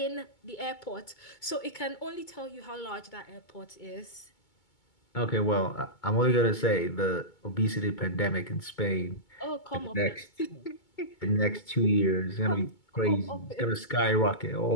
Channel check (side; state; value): right; late; 2.2 ms